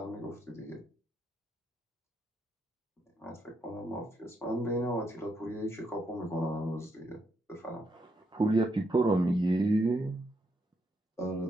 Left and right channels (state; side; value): normal; both; correlation 0.79